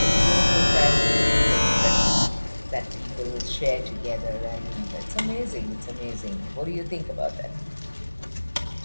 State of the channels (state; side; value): inverted; both; correlation -1.00